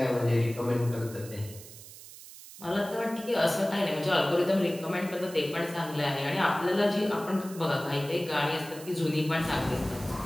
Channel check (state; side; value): noise; right; hiss, 16 dB below the sound